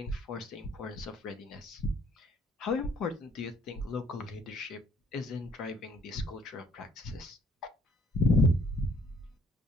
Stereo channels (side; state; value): both; normal; correlation 0.61